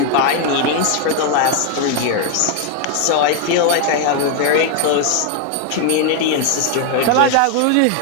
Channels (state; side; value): different; both; correlation 0.00